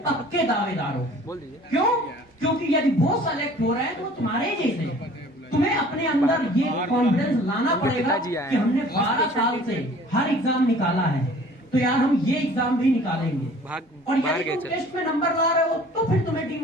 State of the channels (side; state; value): both; normal; correlation 0.50